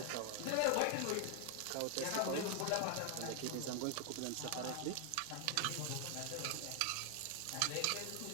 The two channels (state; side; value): different; both; correlation 0.00